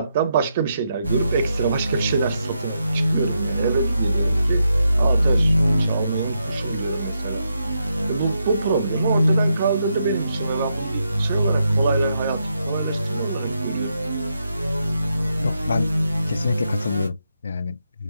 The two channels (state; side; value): inverted; both; correlation -0.83